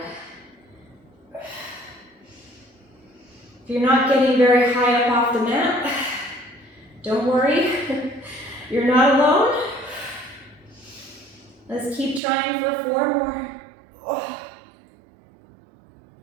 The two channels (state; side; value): drops out; left; at 12.2 s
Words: If you're not getting very high up off the mat, don't worry. You're not alone. Let's keep trying for 4 more.